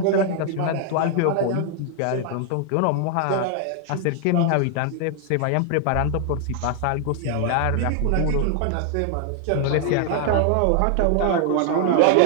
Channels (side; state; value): both; different; correlation 0.00